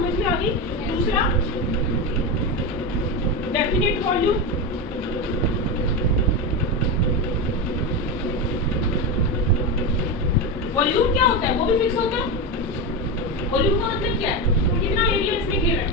में आ गई। दूसरा, डेफिनेट वॉल्यूम, होता है वो भी फिक्स होता है। वॉल्यूम का मतलब क्या है, कितना एरिया इसमें घेर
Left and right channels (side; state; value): both; normal; correlation 0.15